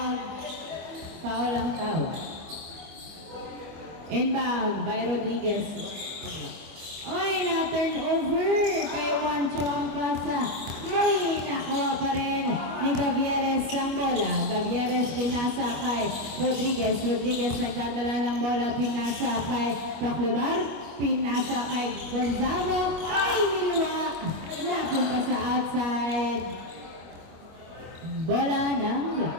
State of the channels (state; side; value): late; left; 25 ms